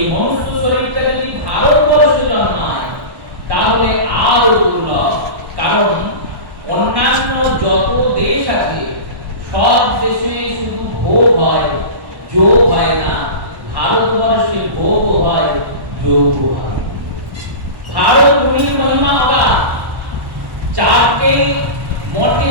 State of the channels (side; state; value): left; late; 1.1 ms